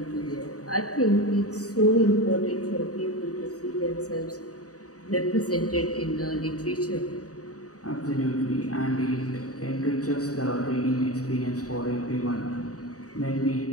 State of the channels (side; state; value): right; late; 0.66 ms